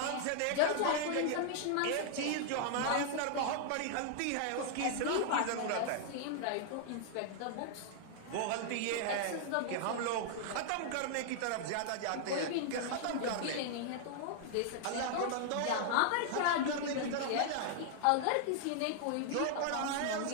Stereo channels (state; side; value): different; both; correlation 0.00